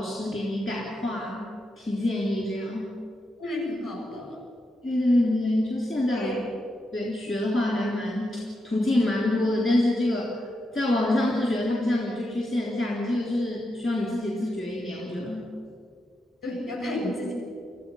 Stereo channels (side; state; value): both; normal; correlation 0.85